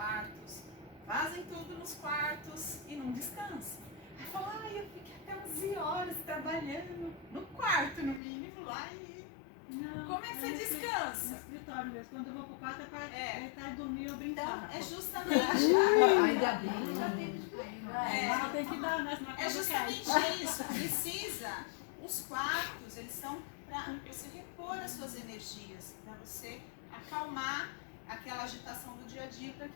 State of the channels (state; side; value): drops out; right; at 8.2 s